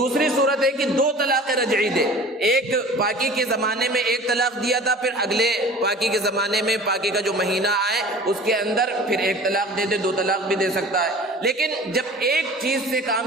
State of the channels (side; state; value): both; normal; correlation 0.42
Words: صورت ہے کہ 2 طلاق رجعی دے، ایک پاکی کے زمانے میں ایک طلاق دیا تھا، پھر اگلے پاکی کے زمانے میں پاکی کا جو مہینہ آئے اس کے اندر پھر ایک طلاق دے دے، 2 طلاق بھی دے سکتا ہے۔ لیکن جب ایک چیز سے